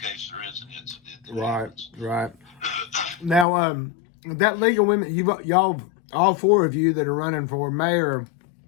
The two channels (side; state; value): right; drops out; at 3.5 s